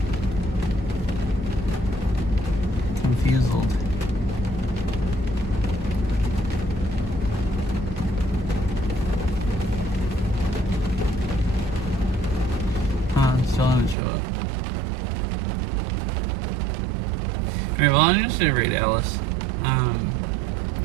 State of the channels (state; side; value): drops out; left; at 14.0 s